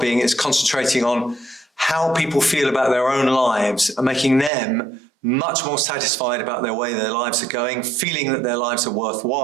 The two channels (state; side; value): drops out; left; at 4.5 s